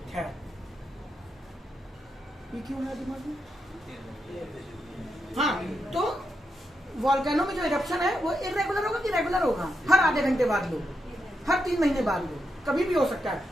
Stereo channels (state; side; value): normal; both; correlation 0.84